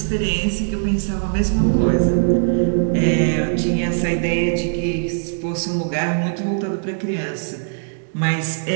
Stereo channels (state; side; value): silent; left; digital silence